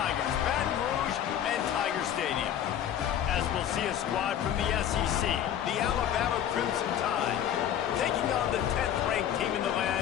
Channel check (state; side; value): quieter; right; 10.2 dB